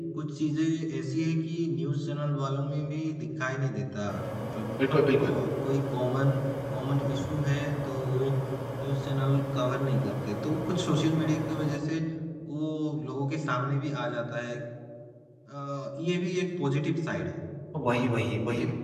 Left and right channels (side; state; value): both; identical; correlation 1.00